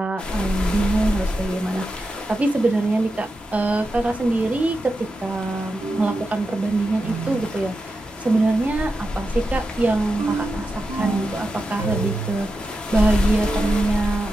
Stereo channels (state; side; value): normal; both; correlation 0.89